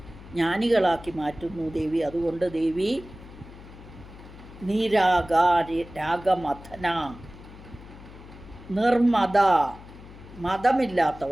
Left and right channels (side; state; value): left; noise; hum, 18 dB below the sound